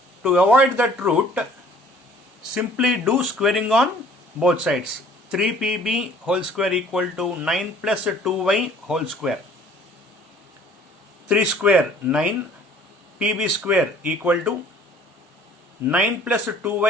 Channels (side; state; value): both; normal; correlation 0.54